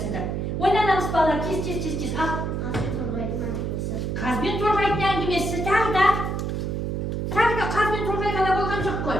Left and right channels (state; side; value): noise; right; hum, 2 dB below the sound